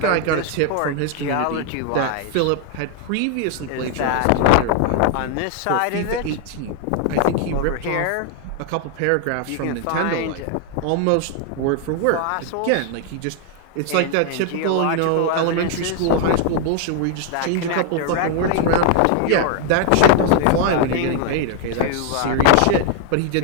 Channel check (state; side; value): different; both; correlation 0.00